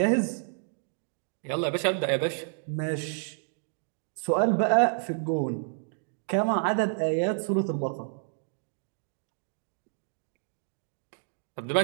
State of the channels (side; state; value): left; silent; digital silence